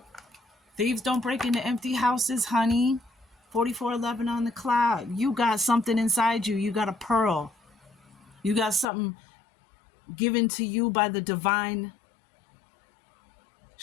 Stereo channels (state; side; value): drops out; right; at 8.8 s